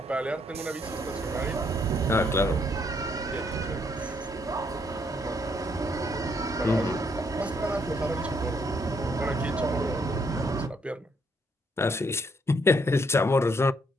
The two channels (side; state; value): both; normal; correlation 0.71